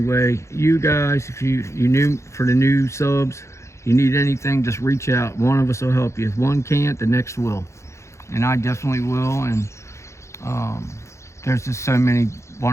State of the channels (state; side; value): late; right; 0.14 ms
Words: you guys, if you new for the new subs, you need anything, just reach out. One of us will help you. If one can't, the next will, and I definitely will. And there's just so many